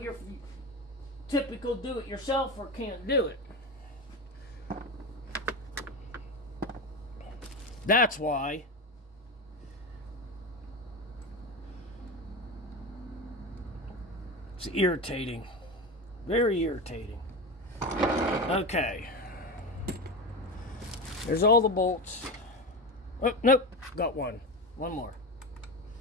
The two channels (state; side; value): normal; both; correlation 0.22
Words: typical do-it-yourselfer can't do it. That's why. It's irritating. Very irritating. Okay. There's all the bolts. Oh, nope. Got one. One more.